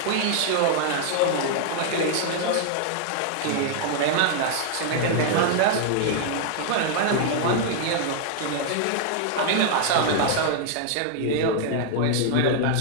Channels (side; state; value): both; different; correlation 0.00